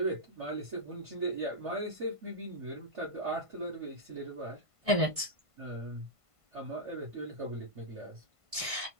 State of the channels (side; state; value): left; late; 1.5 ms